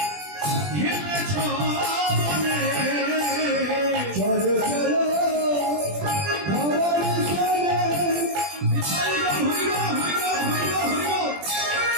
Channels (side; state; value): left; late; 20 ms